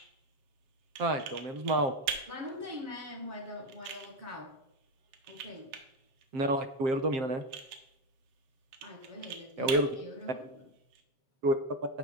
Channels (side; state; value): left; late; 8.0 ms